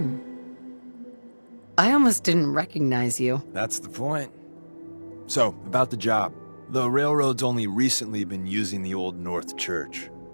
I almost didn't recognize you. That's the point. So, about the job. The railroad's only recently been using the Old North Church.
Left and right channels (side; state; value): both; inverted; correlation -1.00